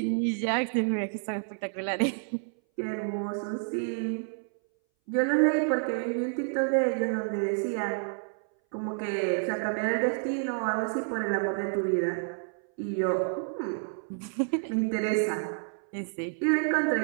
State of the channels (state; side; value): silent; left; 58 dB below the other